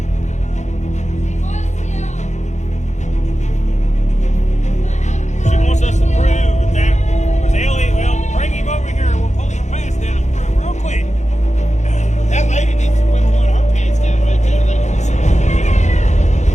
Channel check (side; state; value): right; late; 0.34 ms